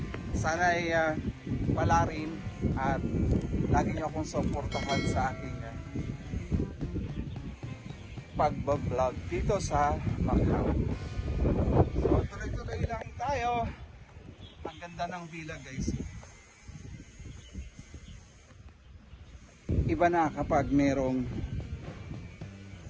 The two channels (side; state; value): both; identical; correlation 1.00